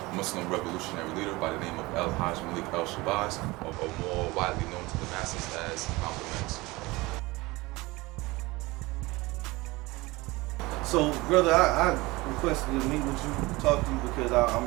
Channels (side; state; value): left; quieter; 21.8 dB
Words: Muslim revolutionary leader by the name of Al-Hajj Malik Al-Shabazz, or more widely known to the masses as Malcolm X. So, brother, I requested to meet with you, talk to you, because